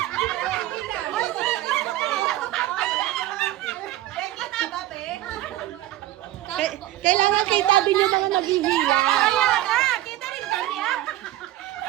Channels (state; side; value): quieter; left; 14.6 dB